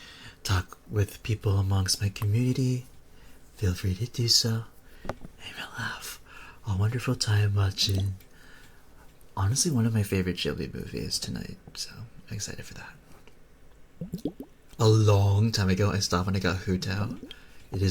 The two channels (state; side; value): identical; both; correlation 1.00